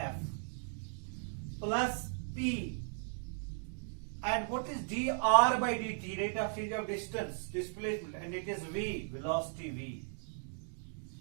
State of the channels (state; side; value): silent; left; digital silence